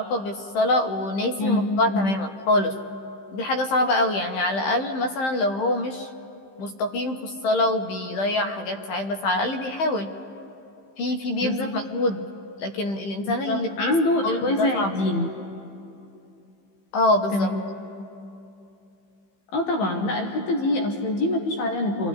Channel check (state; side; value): late; right; 15 ms